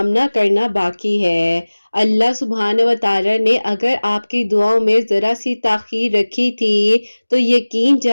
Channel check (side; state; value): both; inverted; correlation -1.00